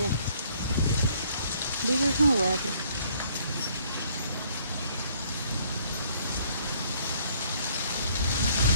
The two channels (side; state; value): both; inverted; correlation -0.62